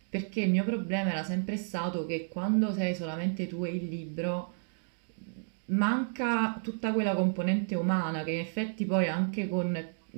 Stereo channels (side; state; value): left; silent; digital silence